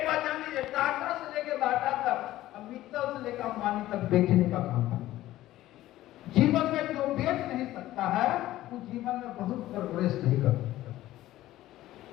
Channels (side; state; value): right; quieter; 15.1 dB